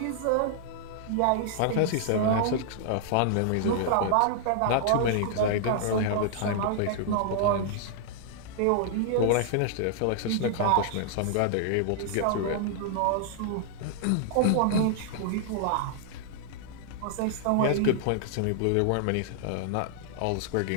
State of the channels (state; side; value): different; both; correlation 0.00